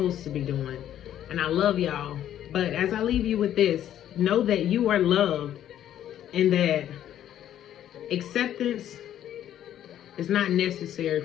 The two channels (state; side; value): quieter; right; 11.2 dB